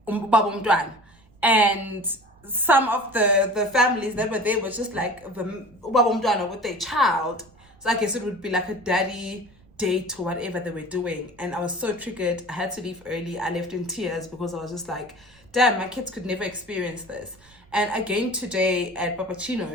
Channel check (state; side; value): noise; right; rumble, 28 dB below the sound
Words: and some of the families that were there was just like the with their child. So I guess it would be like a daddy date or whatever they were doing. And I was so triggered. I had to leave early. I left in tears because I was just like, damn, my kids could never experience this. And again today at